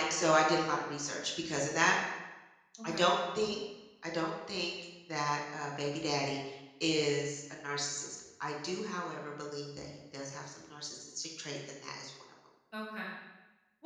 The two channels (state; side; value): identical; both; correlation 1.00